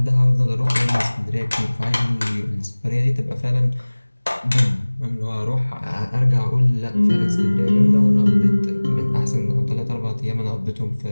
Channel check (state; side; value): inverted; both; correlation -1.00